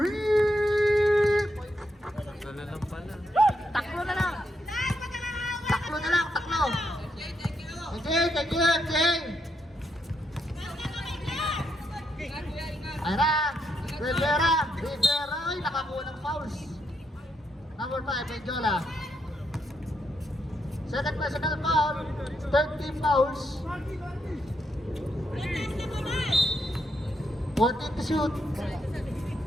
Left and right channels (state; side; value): normal; both; correlation 0.80